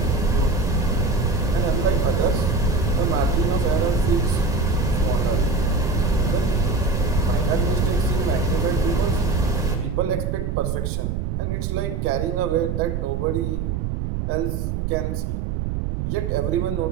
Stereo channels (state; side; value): noise; right; rumble, 1 dB below the sound